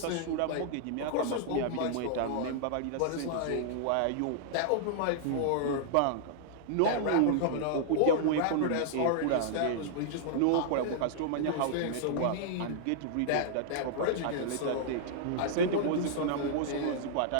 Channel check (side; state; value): both; different; correlation -0.01